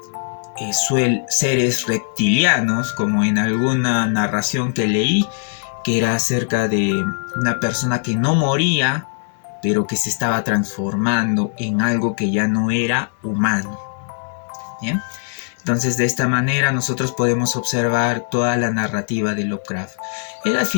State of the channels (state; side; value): silent; right; 63 dB below the other